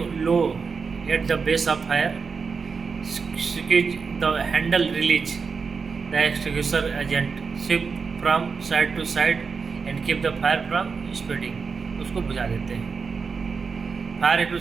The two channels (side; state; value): left; quieter; 5.3 dB